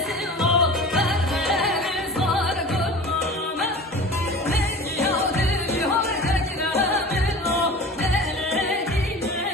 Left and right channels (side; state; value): both; normal; correlation 0.38